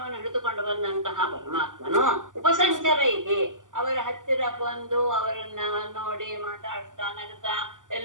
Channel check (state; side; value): late; left; 0.88 ms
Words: ಹಿಡಿದುಕೊಂಡು ಬಂದಂತಹ ಪರಮಾತ್ಮನು ಉಪಸಂಚರೈಹಿ ಅವರ ಹತ್ತಿರ ಬಂದು ಅವರನ್ನ ನೋಡಿ ಮಾತಾಡ್ತಾ ನಗುತ್ತಾ